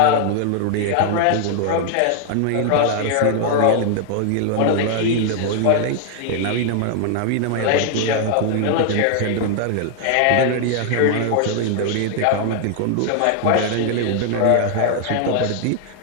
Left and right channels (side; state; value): both; different; correlation -0.01